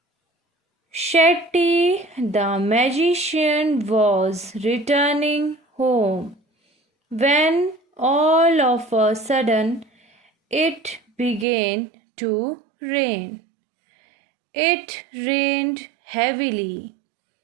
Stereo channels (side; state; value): left; drops out; at 11.5 s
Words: Shetty the magician was returning home when all of a sudden it began to rain. It rained heavily.